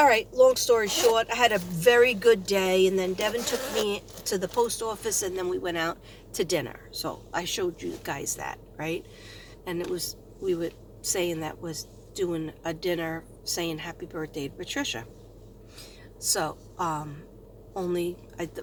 right, long story short, I had a very good day. And then Devin took me to the post office and then we went out to dinner. So I showed you guys that, right? And we were saying that was doing a dinner saying happy birthday to Patricia. So, only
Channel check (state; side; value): identical; both; correlation 1.00